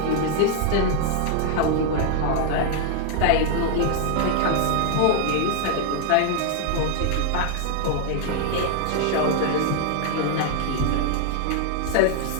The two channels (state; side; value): different; both; correlation 0.00